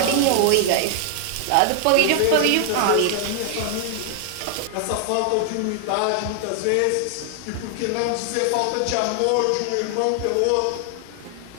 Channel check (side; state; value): both; different; correlation 0.00